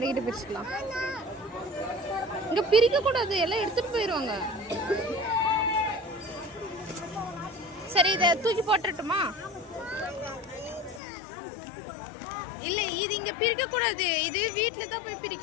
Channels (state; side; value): drops out; right; at 11.0 s